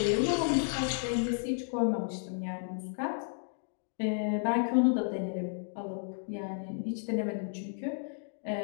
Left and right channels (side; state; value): right; silent; digital silence